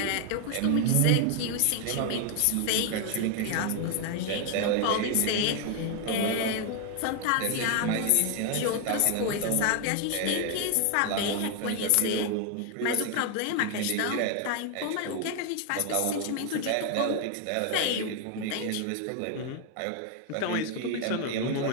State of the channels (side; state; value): both; different; correlation 0.00